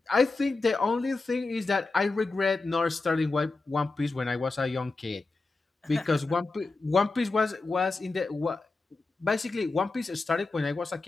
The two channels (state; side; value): quieter; right; 3.6 dB